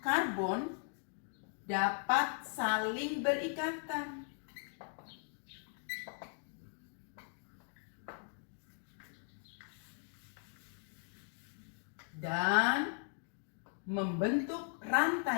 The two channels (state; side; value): silent; right; 52 dB below the other